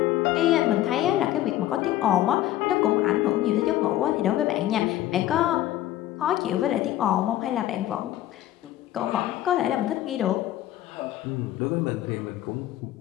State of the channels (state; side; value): quieter; right; 13.8 dB